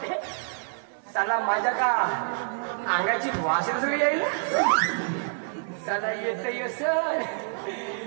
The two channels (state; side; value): silent; left; 55 dB below the other